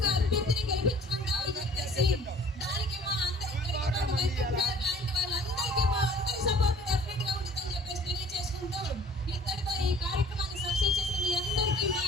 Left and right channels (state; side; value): normal; both; correlation 0.52